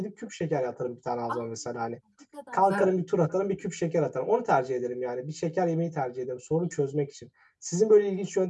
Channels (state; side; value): identical; both; correlation 1.00